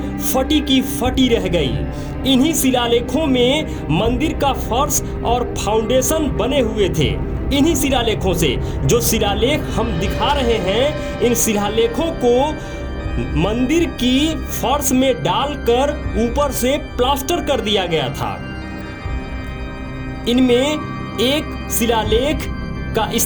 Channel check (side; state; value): both; identical; correlation 1.00